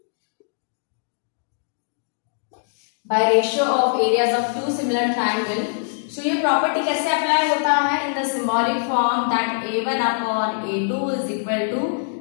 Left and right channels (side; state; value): right; silent; digital silence